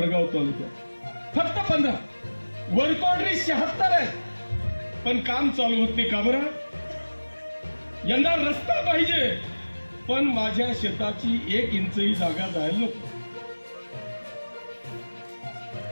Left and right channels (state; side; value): inverted; both; correlation -1.00